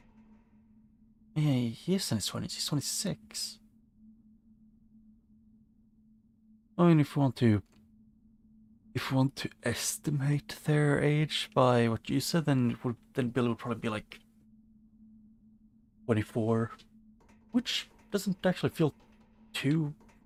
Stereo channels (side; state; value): both; identical; correlation 1.00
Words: Yeah, he is in his 20s. He's 26. I mean, if we want to estimate their age by what you said, then Billy would probably be like 24, which doesn't actually feel too